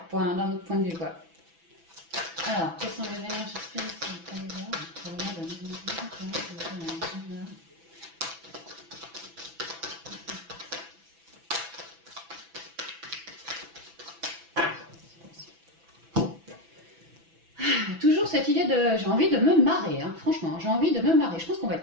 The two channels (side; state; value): left; late; 6.0 ms